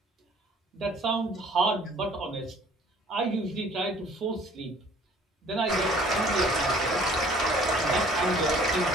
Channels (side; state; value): both; normal; correlation 0.54